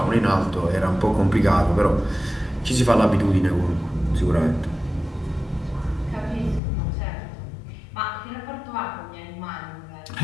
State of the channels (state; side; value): drops out; right; at 6.6 s